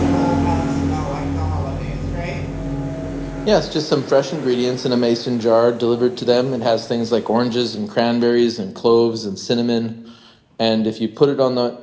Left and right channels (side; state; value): both; identical; correlation 1.00